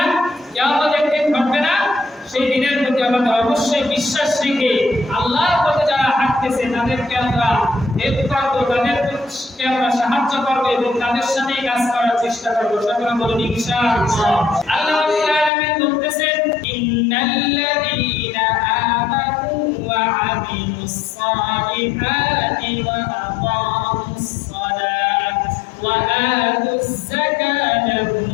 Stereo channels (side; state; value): right; drops out; at 15.5 s